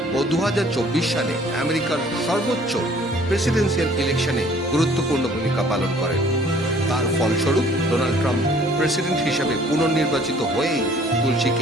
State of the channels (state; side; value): normal; both; correlation 0.56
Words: ও 2024 সালে আমেরিকার সর্বোচ্চ প্রেসিডেন্সিয়াল ইলেকশনে গুরুত্বপূর্ণ ভূমিকা পালন করেন। তার ফলস্বরূপ ডোনাল্ড ট্রাম্প প্রেসিডেন্ট হিসাবে পুনর্নির্বাচিত হয়েই